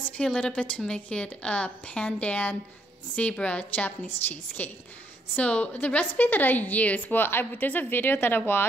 a little bit to make it a Pandan zebra Japanese cheesecake. So the recipe that I use, there's a video that I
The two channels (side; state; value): both; normal; correlation 0.72